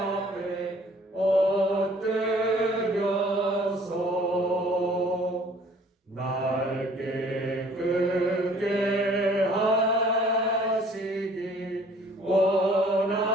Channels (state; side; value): normal; both; correlation 0.55